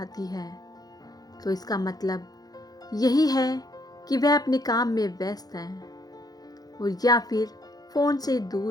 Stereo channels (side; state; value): right; late; 0.19 ms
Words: है तो इसका मतलब यही है कि वह अपने काम में व्यस्त है और या फिर फ़ोन से